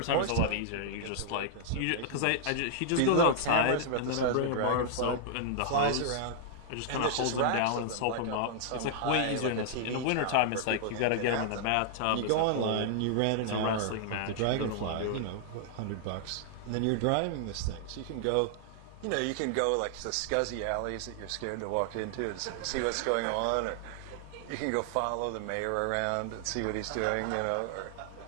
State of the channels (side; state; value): both; different; correlation -0.01